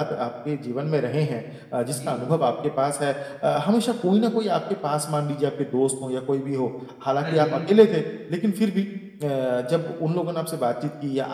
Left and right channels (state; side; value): identical; both; correlation 1.00